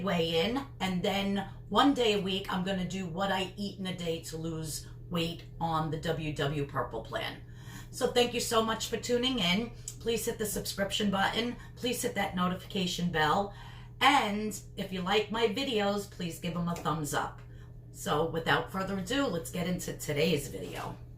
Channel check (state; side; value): identical; both; correlation 1.00